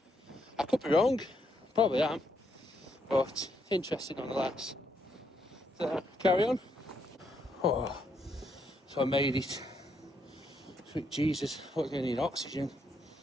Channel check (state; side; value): normal; both; correlation 0.76